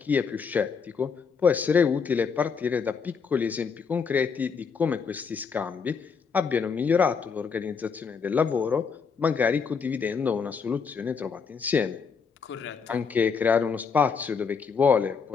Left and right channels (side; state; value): right; quieter; 5.8 dB